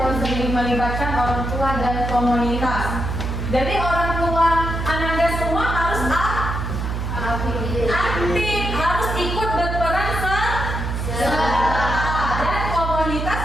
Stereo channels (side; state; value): right; noise; hum, 3 dB below the sound